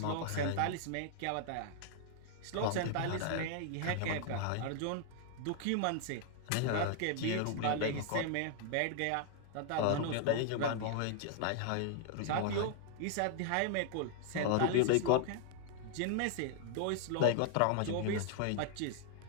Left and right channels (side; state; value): both; different; correlation 0.00